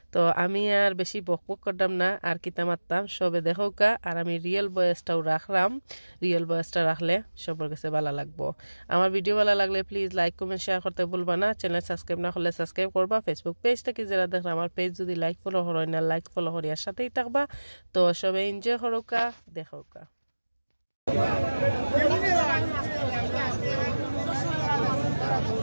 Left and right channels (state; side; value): inverted; both; correlation -1.00